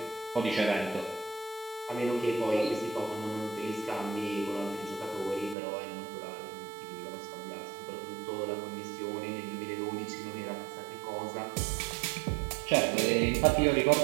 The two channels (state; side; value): drops out; left; at 5.6 s